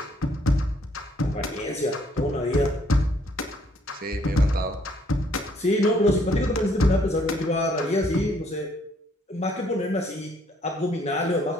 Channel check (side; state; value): both; normal; correlation 0.66